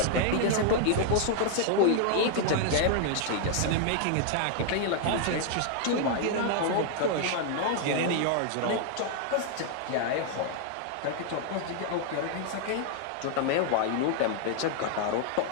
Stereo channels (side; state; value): both; different; correlation 0.00